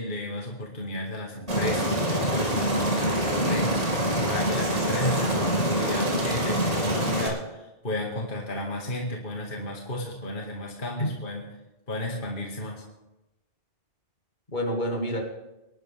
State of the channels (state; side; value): late; right; 1.8 ms